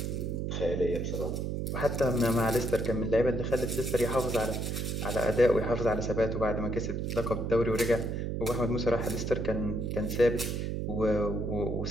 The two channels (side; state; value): right; noise; hum, 2 dB below the sound